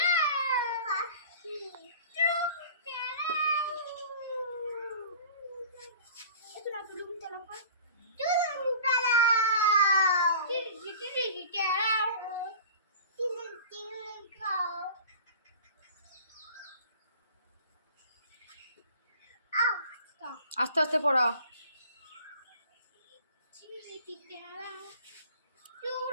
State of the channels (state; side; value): inverted; both; correlation -0.42